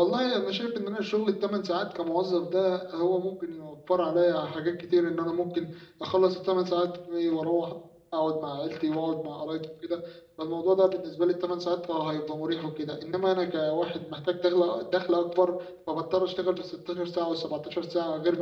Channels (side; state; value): both; identical; correlation 1.00